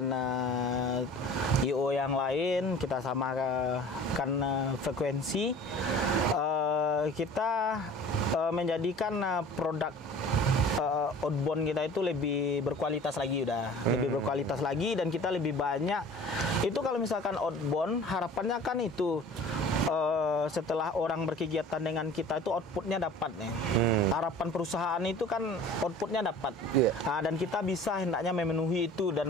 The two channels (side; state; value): both; normal; correlation 0.44